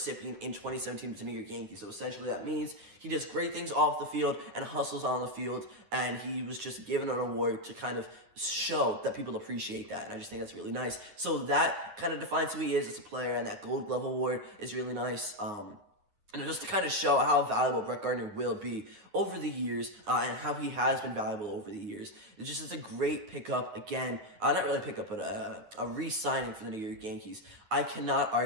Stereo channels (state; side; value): late; left; 9.6 ms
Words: in 2017 with the New York Yankees. So essentially that means he does great things off the field and hustles on the field, and he was just given an award to kind of show that people appreciate that, and I just think that's really nice. So that kind of defines who he is as a player, and that Gold Glove Award is really nice. And just to kind of show how valuable Brett Gardner will be over the years, and how he has been valuable over the years. It just is a great pickup, again, not really pickup, but a re-signing for the New York Yankees. I cannot